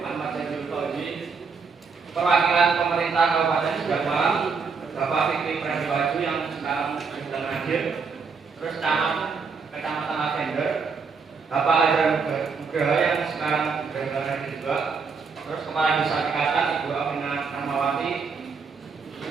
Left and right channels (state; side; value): quieter; left; 5.2 dB